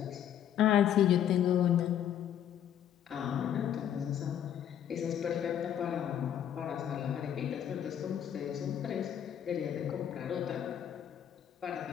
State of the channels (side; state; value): right; quieter; 9.9 dB